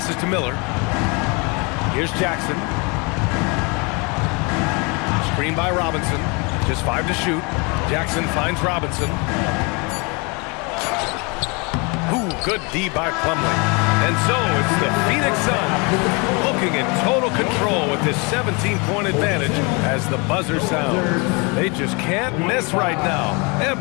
to Miller. Here's Jackson. Screen by Robinson. Just 5 to shoot. Jackson finds Robinson. Ooh, good D by Plumlee. And so it's the Phoenix Suns looking in total control with this 17-point advantage as the buzzer sounds. They just can't miss right now.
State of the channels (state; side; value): quieter; right; 30.2 dB